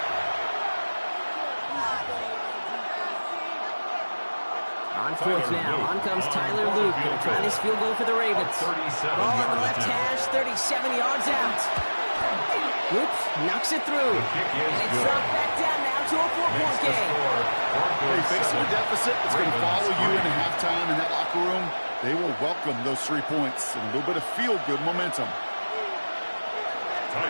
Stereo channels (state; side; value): inverted; both; correlation -1.00